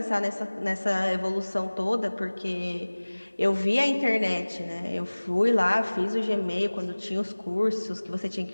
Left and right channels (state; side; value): inverted; both; correlation -1.00